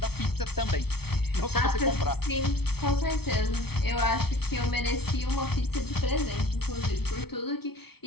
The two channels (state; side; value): late; right; 0.96 ms